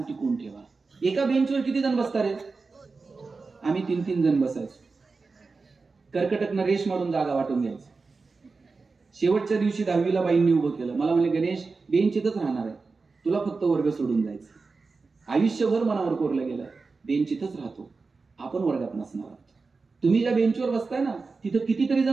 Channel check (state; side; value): quieter; left; 4.2 dB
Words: ठेवा. एका बेंचवर किती जण बसतात रे? आम्ही 3-3 जण बसायचो. कर्कटकनं रेश मारून जागा वाटून घ्यायचं. शेवटच्या दिवशी 10वीला बाईंनी उभं केलं. मला म्हणले, गणेश बेंच इथंच राहणार आहे, तुला फक्त वर्ग सोडून जायचं. आयुष्यभर मनावर कोरलं गेलं, बेंच इथंच राहतो, आपण वर्गात नसणार आहोत. तुम्ही ज्या बेंचवर बसताय ना, तिथं कितीतरी